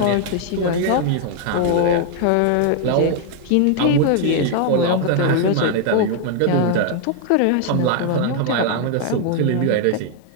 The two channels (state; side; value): different; both; correlation 0.00